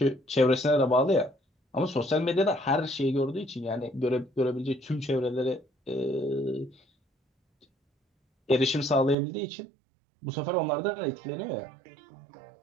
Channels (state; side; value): drops out; left; at 9.2 s